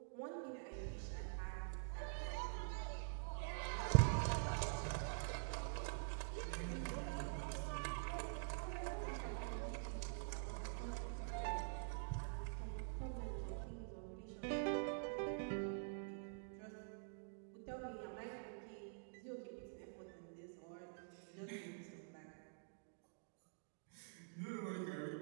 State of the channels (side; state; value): left; silent; digital silence